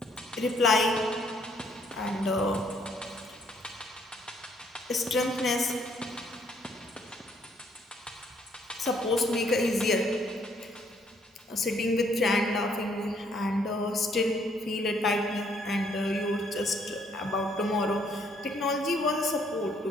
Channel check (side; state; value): both; normal; correlation 0.67